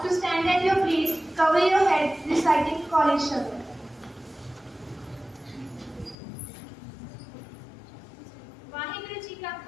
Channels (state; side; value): drops out; right; at 6.2 s